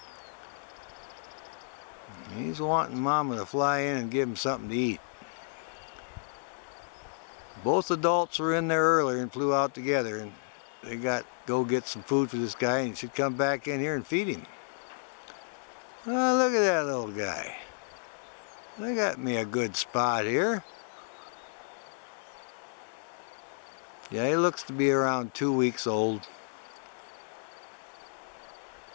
He's wanting Mama to fly in and give him something to eat. Both adults were in there earlier and flew out together, and they got go get some food for this guy, and he should come back in here and feed him. Oh, look at that little guy. They got me a good spot here. Yeah, he looks to be around 2 weeks old.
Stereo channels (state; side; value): silent; right; digital silence